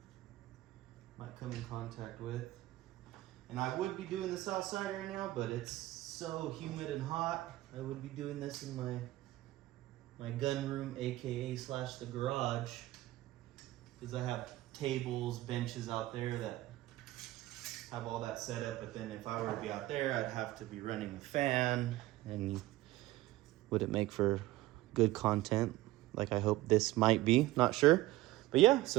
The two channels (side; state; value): left; quieter; 16.9 dB